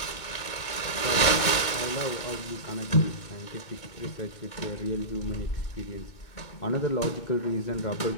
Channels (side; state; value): right; late; 2.2 ms